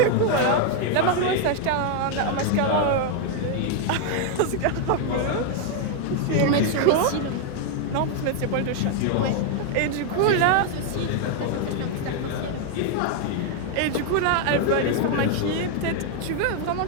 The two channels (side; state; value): both; different; correlation 0.00